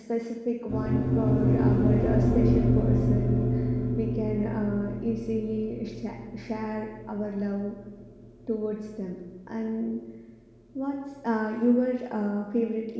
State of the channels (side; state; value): both; identical; correlation 1.00